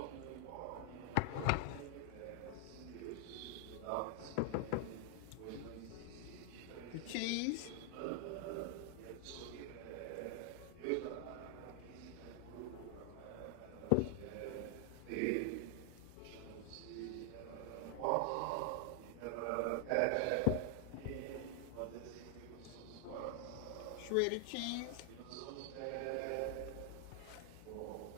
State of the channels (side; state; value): both; different; correlation 0.00